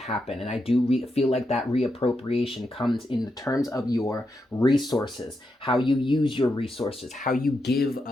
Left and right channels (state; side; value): normal; both; correlation 0.85